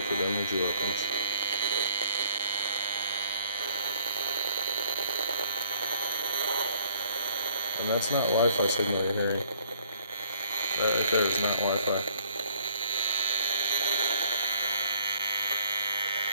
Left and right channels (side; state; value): both; inverted; correlation -0.60